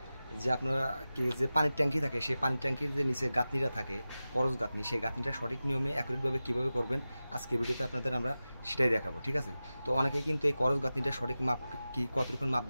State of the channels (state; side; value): inverted; both; correlation -0.95